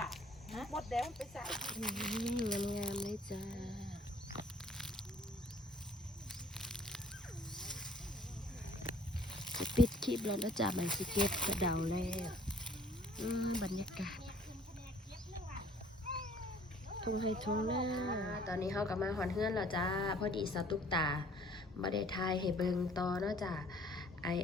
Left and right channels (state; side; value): normal; both; correlation 0.56